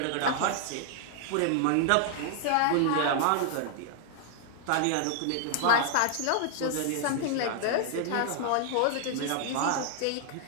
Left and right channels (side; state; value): both; different; correlation -0.01